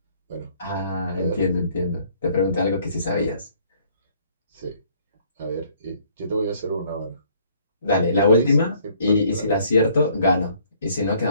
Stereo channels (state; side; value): inverted; both; correlation -0.62